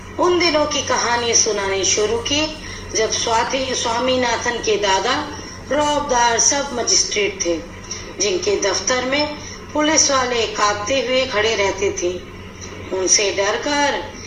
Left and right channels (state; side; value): identical; both; correlation 1.00